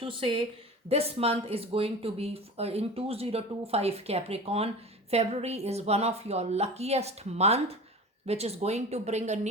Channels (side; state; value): both; normal; correlation 0.34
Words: say, this month is going to be in 2025 Capricorn, February is one of your luckiest month, which is going to bring a